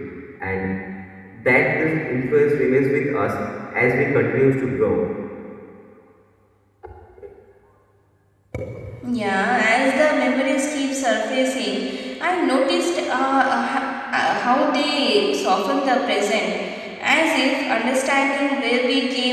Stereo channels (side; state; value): both; identical; correlation 1.00